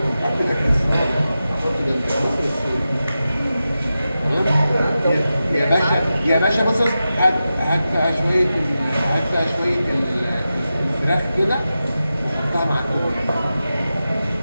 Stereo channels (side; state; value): both; inverted; correlation -0.92